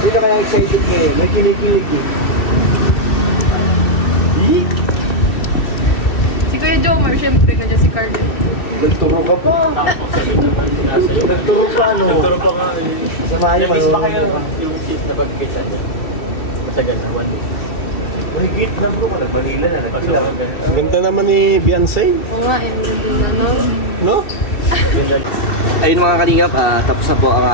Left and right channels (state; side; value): late; right; 2.7 ms